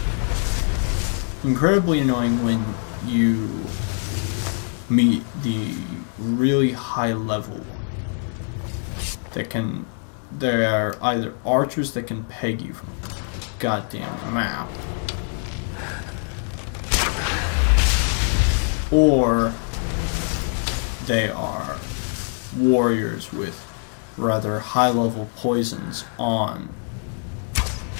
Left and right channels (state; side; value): silent; right; 56 dB below the other